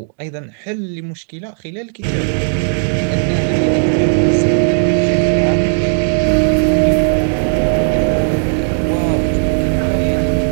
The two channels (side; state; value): left; silent; digital silence